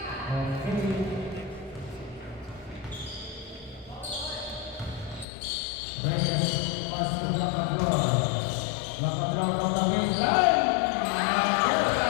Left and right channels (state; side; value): drops out; right; at 5.2 s